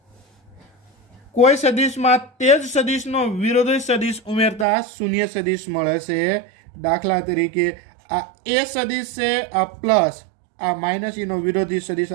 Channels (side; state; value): left; drops out; at 4.7 s